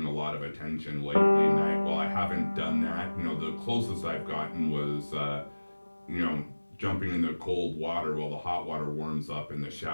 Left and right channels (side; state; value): both; inverted; correlation -1.00